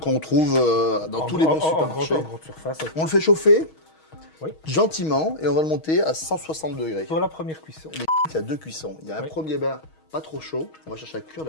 Qu'on trouve dans tous les bons supermarchés. En grande surface. On le fait chauffer oui. Gentiment et on va le monter à 160 degrés. Pour la première cuisson. Il y a deux cuissons. Il y a un premier bain pas trop chaud. On va chercher à cuire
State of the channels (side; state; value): right; late; 6.3 ms